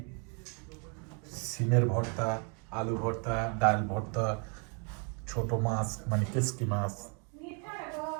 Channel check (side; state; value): left; quieter; 37.6 dB